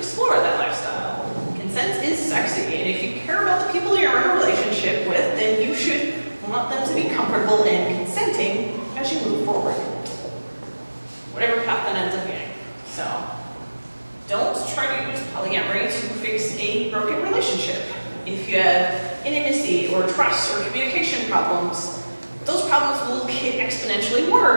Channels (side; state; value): both; inverted; correlation -1.00